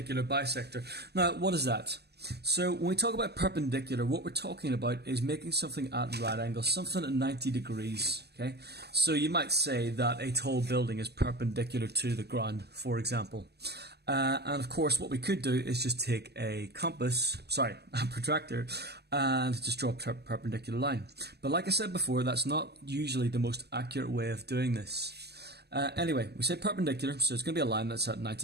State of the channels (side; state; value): left; late; 0.48 ms